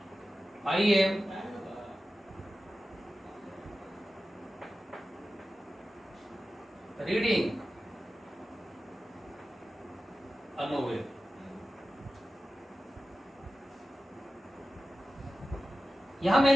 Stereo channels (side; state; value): both; normal; correlation 0.94